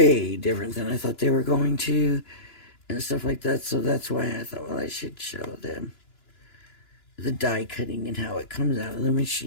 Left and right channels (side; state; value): right; late; 2.9 ms